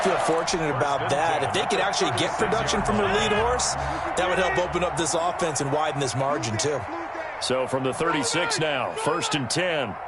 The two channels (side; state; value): both; identical; correlation 1.00